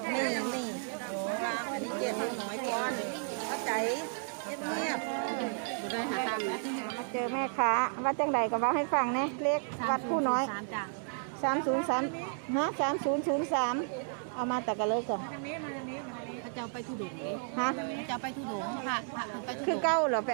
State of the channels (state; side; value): silent; left; 56 dB below the other